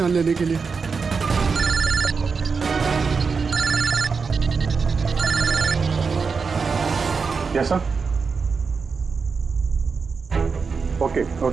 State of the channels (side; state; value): left; quieter; 5.1 dB